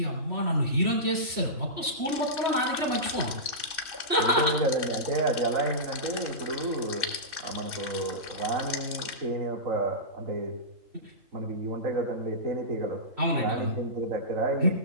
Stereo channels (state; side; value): late; left; 3.1 ms